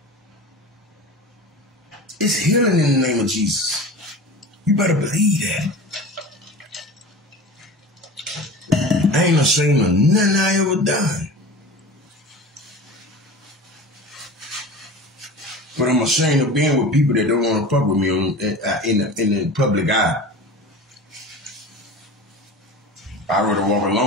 It's healing in the name of Jesus. You better believe that. I ain't ashamed of nothing I ever done. But I'm ashamed of being with people that don't want to fuck with me in the public eye. I'd rather walk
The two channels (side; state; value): both; normal; correlation 0.35